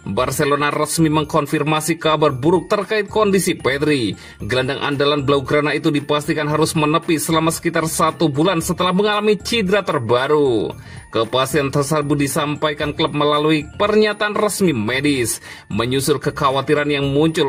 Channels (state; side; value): identical; both; correlation 1.00